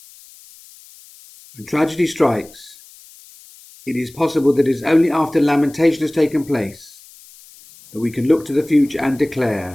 When tragedy strikes, it is possible that it is only after lamentation has taken place that we can look to the future and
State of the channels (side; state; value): left; noise; hiss, 23 dB below the sound